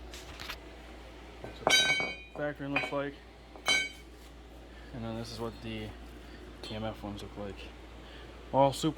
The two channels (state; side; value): identical; both; correlation 1.00